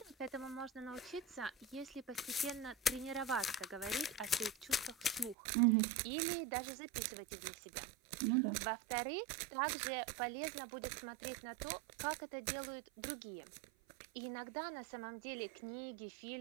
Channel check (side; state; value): left; drops out; at 5.4 s